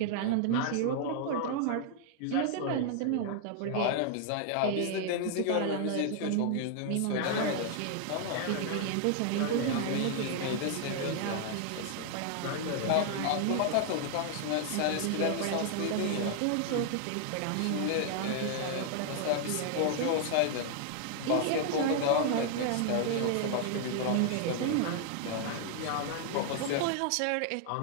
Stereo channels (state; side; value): different; both; correlation 0.00